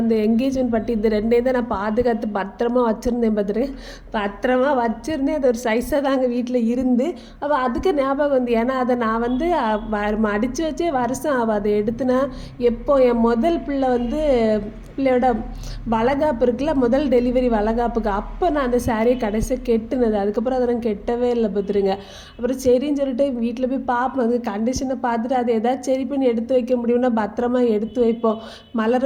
அந்த என்கேஜ்மெண்ட் பட்டு இது ரெண்டையும் தான் நான் பாதுகாத்து பத்திரமா வச்சுருந்தேன். பார்த்துருக்கேன், பத்திரமா வச்சுருந்தேன். அது ஒரு சைஸாக தாங்க வீட்டில் இருந்து. அப்போ அதுக்கு ஞாபகம் வந்து, ஏன்னா அதை நான் வந்து மடித்து வச்சே வருஷம் ஆகும். அதை எடுத்துனா எப்போ என் முதல் பிள்ளை வந்து பிள்ளையோட வளகாப்பு இருக்குல்ல, முதல் டெலிவரி வளகாப்புக்கு அப்போ நான் அந்த சாரியை கடைசியாக கெட்டுனது. அதுக்கப்புறம் அதை நான் கெட்டவே இல்லை பார்த்துருங்க. அப்புறம் சரின்னு சொல்லிட்டு வீட்டில் போய் பார்ப்போம், அது கண்டிஷனை பார்த்துட்டு அதை ஏதாச்சும் சரி பண்ணி எடுத்து வைக்க முடியும்னா பத்திரமா எடுத்து வைப்போம்.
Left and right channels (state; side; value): identical; both; correlation 1.00